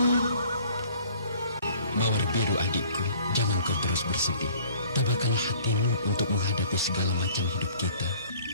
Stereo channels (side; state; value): both; inverted; correlation -0.54